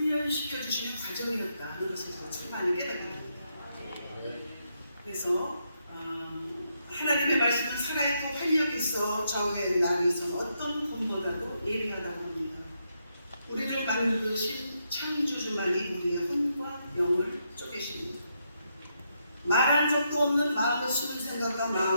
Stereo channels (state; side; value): inverted; both; correlation -0.80